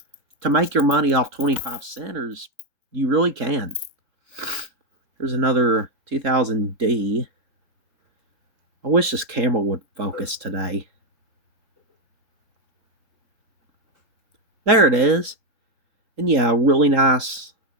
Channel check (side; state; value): left; late; 3.7 ms